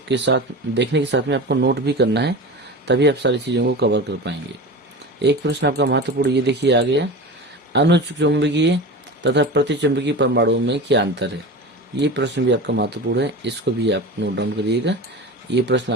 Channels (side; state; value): both; normal; correlation 0.30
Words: के साथ देखने के साथ में आपको नोट भी करना है, तभी आप सारी चीजों को कवर कर पाएंगे। एक प्रश्न आपका महत्वपूर्ण, ये देखिए आ गया, अनुचुंबकीय तथा प्रतिचुंबकीय परमाणुओं में क्या अंतर है? ये प्रश्न भी आपका महत्वपूर्ण है, इसको भी आप नोट डाउन करिएगा। ये प्रश्न